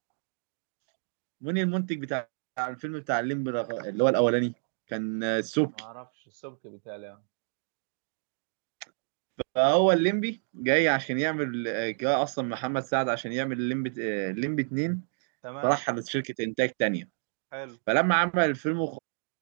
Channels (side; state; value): left; silent; digital silence